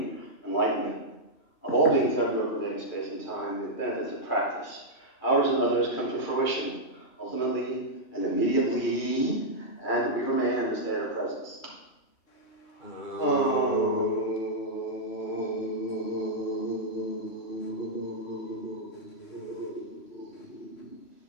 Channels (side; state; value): right; late; 3.0 ms